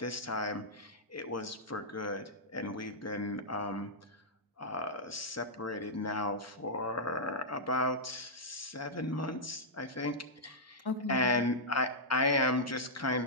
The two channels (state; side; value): normal; both; correlation -0.10